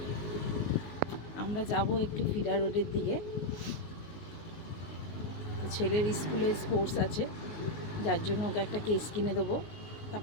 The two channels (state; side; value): late; right; 19 ms